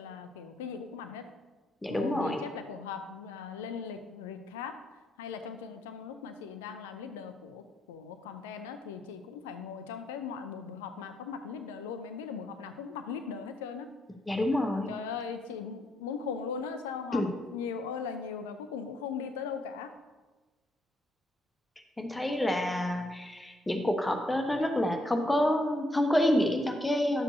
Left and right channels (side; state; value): both; normal; correlation 0.76